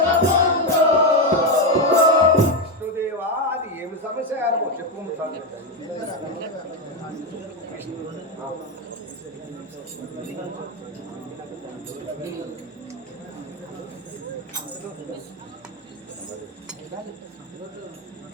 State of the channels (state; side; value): normal; both; correlation 0.08